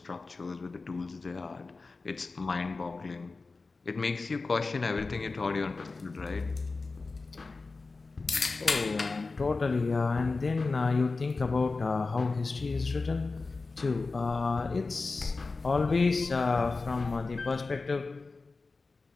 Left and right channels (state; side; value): quieter; right; 3.9 dB